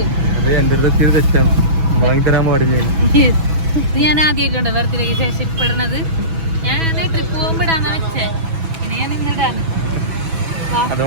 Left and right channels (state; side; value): late; left; 6.1 ms